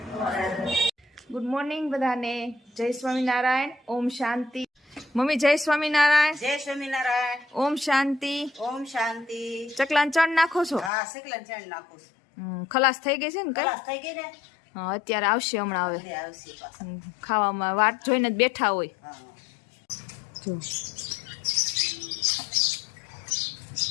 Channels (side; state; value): right; drops out; at 10.9 s